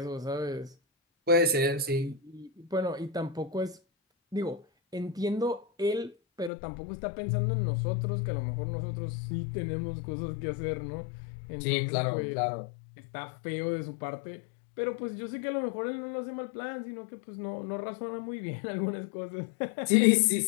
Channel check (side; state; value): right; drops out; at 6.5 s